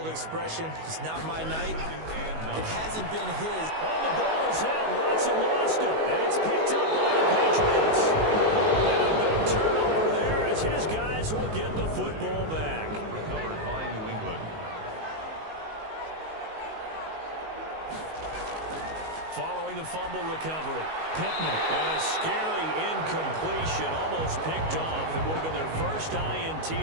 expression, it's not my night. It hasn't been his. Oh, the ball is out. Watson lost it. And it's picked up by the Patriots. And a big turnover there as his guys will get the football back. Recovered by New England. Following the fumble recovery, Pittman. And a scary incompletion, almost picked off. It would have been their first INT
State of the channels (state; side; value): late; left; 19 ms